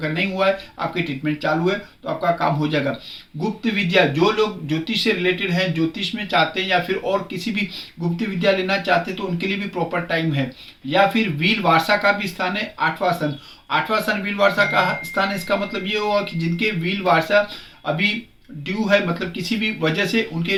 नहीं हुआ है, आपकी ट्रीटमेंट चालू है, तो आपका काम हो जाएगा। गुप्त विद्या, जो लोग ज्योतिष से रिलेटेड हैं, ज्योतिष में चाहते हैं या फिर और किसी भी गुप्त विद्या लेना चाहते हैं तो उनके लिए भी प्रॉपर टाइम है। या फिर वील वारसा का भी स्थान है, 8वां स्थान। 8वां स्थान वील वारसा का स्थान है। इसका मतलब ये हुआ कि जिनके वील वारसा अभी ड्यू है, मतलब किसी भी वजह से उनके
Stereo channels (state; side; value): identical; both; correlation 1.00